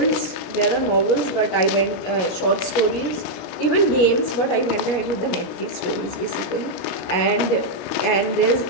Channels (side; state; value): right; late; 17 ms